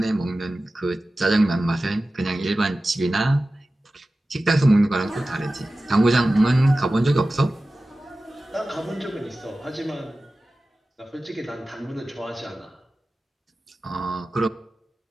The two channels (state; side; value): normal; both; correlation 0.95